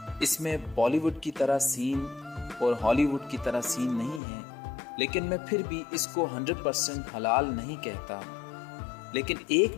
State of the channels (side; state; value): right; drops out; at 4.2 s